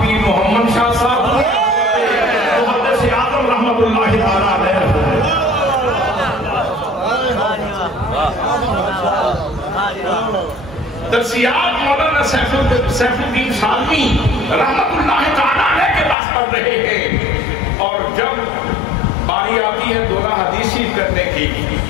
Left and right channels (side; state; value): right; drops out; at 16.2 s